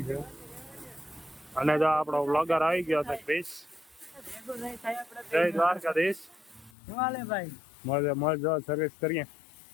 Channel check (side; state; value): right; drops out; at 6.7 s